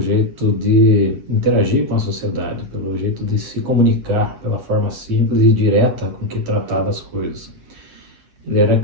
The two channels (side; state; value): left; late; 9.2 ms